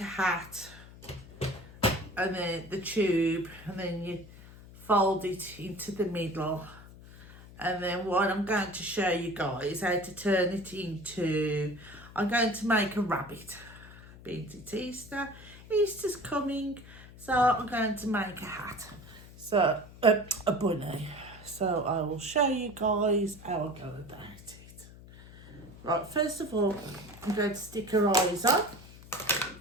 hat and then the tube, and then you fold it into the middle, and then what I'm going to show you guys how to turn it into, I'm going to make a rabbit. Being it Easter, Easter's coming, so I'm going to make a hat, so a bunny. So I will show you guys how I go about it. Right, first of all, I'm going to stick her eyes on.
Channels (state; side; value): noise; left; hum, 18 dB below the sound